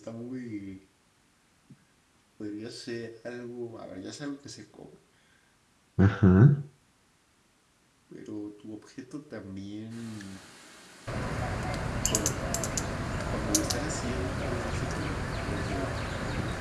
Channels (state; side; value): identical; both; correlation 1.00